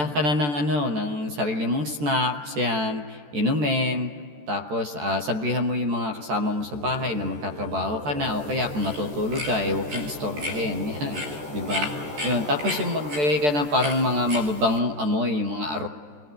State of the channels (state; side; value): late; left; 14 ms